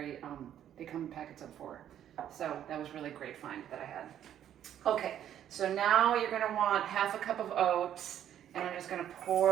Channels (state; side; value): quieter; left; 10.5 dB